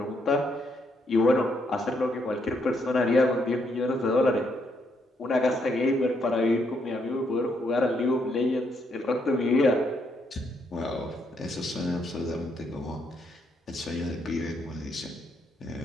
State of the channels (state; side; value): normal; both; correlation 0.75